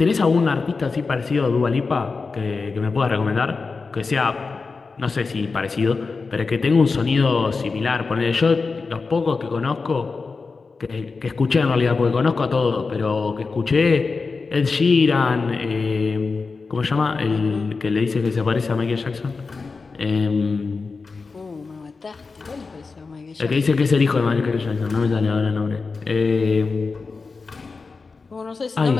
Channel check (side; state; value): right; quieter; 4.4 dB